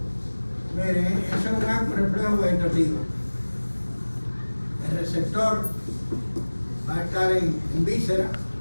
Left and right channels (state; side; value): inverted; both; correlation -1.00